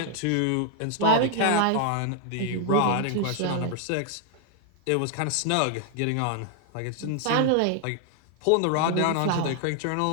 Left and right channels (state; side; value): different; both; correlation 0.00